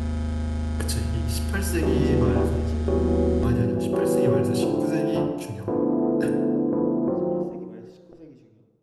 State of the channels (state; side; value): identical; both; correlation 1.00